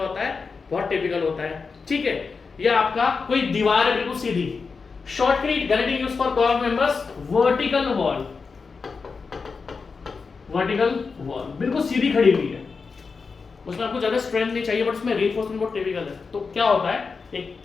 होता है? बहुत टिपिकल होता है। ठीक है, या आपका कोई दीवार है बिल्कुल सीधी, shotcrete guarantee use for curved members, vertical wall, vertical wall बिल्कुल सीधी खड़ी हुई है, उसमें आपको ज्यादा स्ट्रेंथ नहीं चाहिए, बट उसमें रीइंफोर्समेंट बहुत टिपिकल है। तो क्या होता है?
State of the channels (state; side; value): quieter; right; 4.9 dB